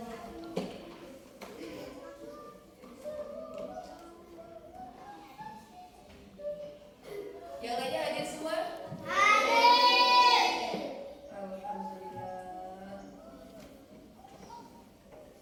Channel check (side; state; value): both; identical; correlation 1.00